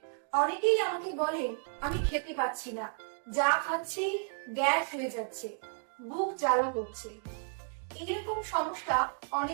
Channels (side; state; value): left; silent; 56 dB below the other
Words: অনেকেই আমাকে বলেন আমি খেতে পাচ্ছি না, যা খাচ্ছি গ্যাস হয়ে যাচ্ছে, বুক জ্বালা করছে। এরকম সমস্যা